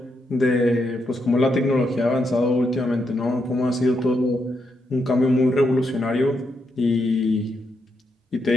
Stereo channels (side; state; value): both; normal; correlation 0.81